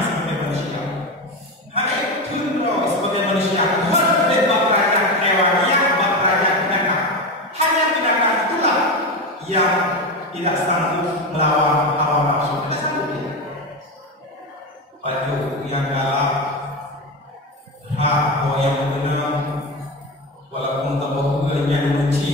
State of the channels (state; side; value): normal; both; correlation 0.19